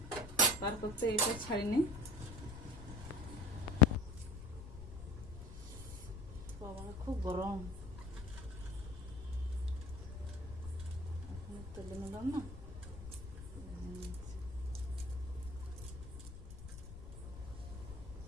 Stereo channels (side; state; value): left; noise; rumble, 12 dB below the sound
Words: তার করতে এটা ছাড়ি নিই। বাবা খুব গরম, এখন তেলে নিলাম না।